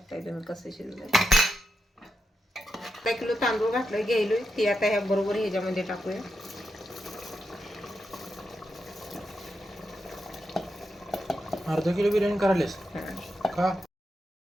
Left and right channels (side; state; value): both; normal; correlation 0.86